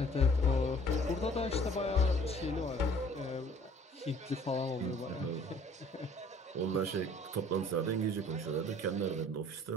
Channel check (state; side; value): normal; both; correlation 0.55